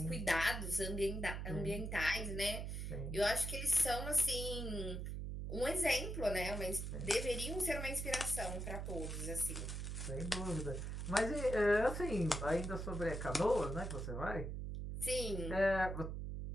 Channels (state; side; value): noise; right; hum, 4 dB below the sound